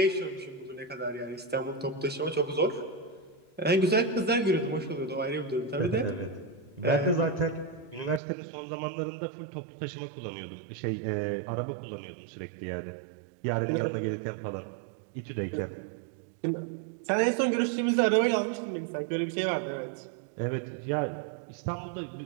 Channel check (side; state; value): left; drops out; at 8.2 s